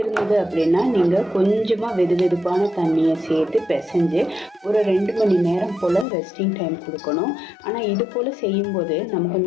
அப்படின்னா நீங்கள் கொஞ்சமாக வெதுவெதுப்பான தண்ணியை சேர்த்து பிசைஞ்சு ஒரு 2 மணி நேரம் போல் ரெஸ்டிங் டைம் கொடுக்கணும். ஆனால் இது போல் செய்யும்போது நமக்கு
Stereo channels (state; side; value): drops out; right; at 6.1 s